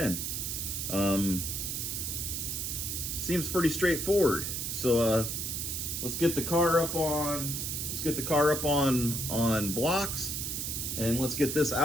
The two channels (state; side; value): noise; right; hiss, 3 dB below the sound